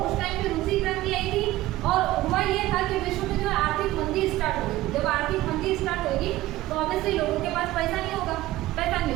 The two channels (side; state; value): left; quieter; 16.5 dB